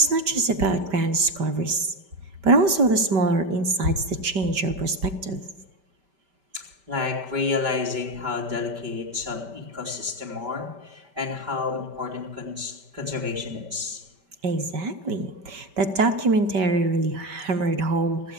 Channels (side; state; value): left; late; 5.1 ms